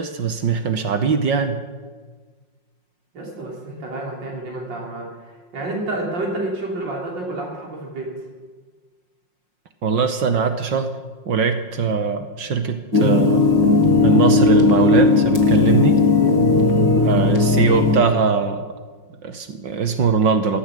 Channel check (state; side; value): late; left; 5.6 ms